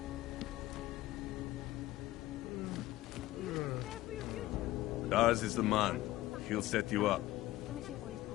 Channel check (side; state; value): right; quieter; 16.5 dB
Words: Daz is the man. He'll set you up.